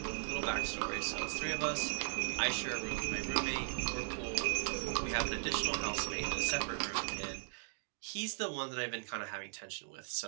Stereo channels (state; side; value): silent; left; digital silence